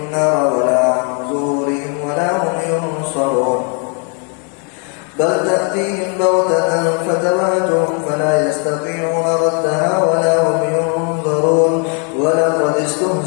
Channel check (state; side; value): quieter; right; 39.0 dB